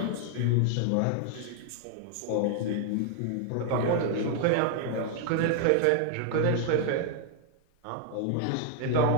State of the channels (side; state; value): both; different; correlation 0.00